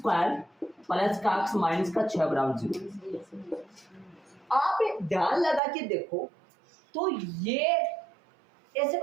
प्लस का x माइनस का 6 बराबर 0। आप ध्यान लगा के देखो तो ये ऐसे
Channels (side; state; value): left; drops out; at 5.6 s